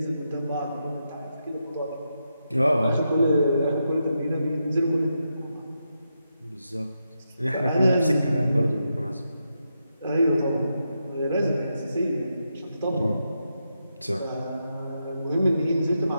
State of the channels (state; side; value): inverted; both; correlation -0.85